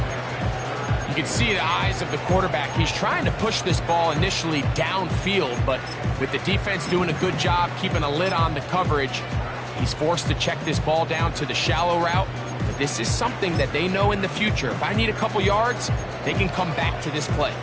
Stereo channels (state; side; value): identical; both; correlation 1.00